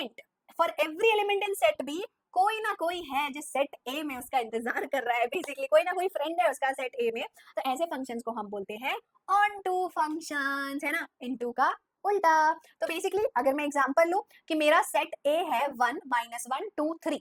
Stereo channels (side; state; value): both; identical; correlation 1.00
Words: for every element in set B कोई ना कोई है जो सेट ए में उसका इंतजार कर रहा है. बेसिकली कोई ना कोई फ्रेंड है उसका सेट ए में. तो ऐसे फंक्शंस को हम बोलते हैं ऑन टू फंक्शंस, है ना, इनटू का उल्टा. तो बेसिकली अगर मैं एग्जांपल लूं कि मेरा सेट ए है 1 -1 2 3,